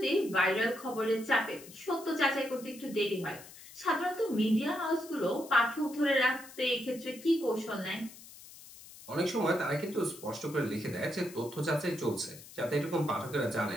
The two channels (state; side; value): noise; left; hiss, 18 dB below the sound